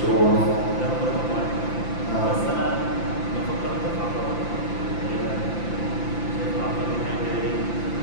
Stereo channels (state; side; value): late; right; 5.9 ms